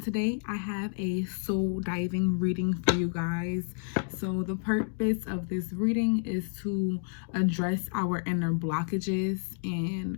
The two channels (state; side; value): silent; right; digital silence